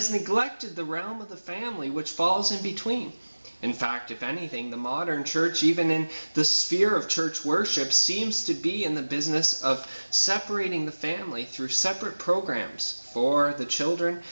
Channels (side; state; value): both; inverted; correlation -1.00